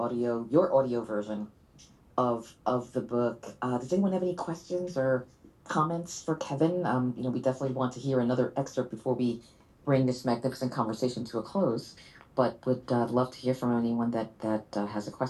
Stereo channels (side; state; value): both; identical; correlation 1.00